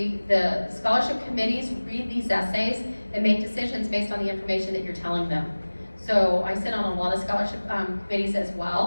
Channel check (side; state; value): both; inverted; correlation -1.00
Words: scholarship committees read these essays and make decisions based on the information that you're telling them. So I sit on a lot of scholarship committees as